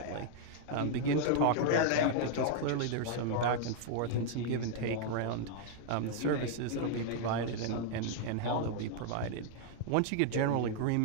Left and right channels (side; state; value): both; different; correlation -0.01